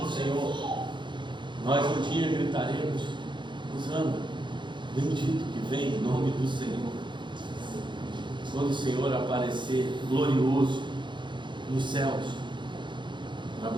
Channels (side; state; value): left; late; 0.23 ms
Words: do Senhor, nós um dia gritaremos: Hosana, bendito que vem em nome do Senhor, quando o Senhor aparecer glorioso nos céus para